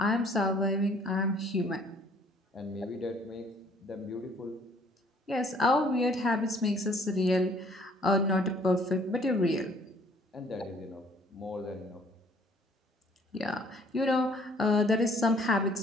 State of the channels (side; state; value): both; normal; correlation 0.59